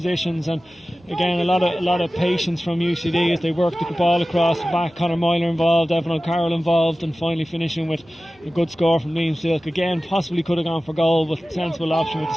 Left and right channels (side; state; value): both; normal; correlation 0.96